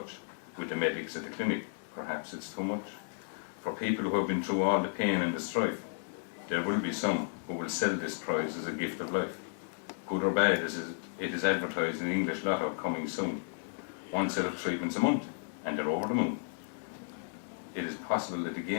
with the medics at the clinic. Perhaps it's too much. For people who have been through all the pain and the strife, there will be some who will sell this prize as a gift of life. Good or bad, as it is advertised in English Lotto coming soon. One set of treatments a month, and they're over the moon. It is possible that the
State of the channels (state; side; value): silent; right; 56 dB below the other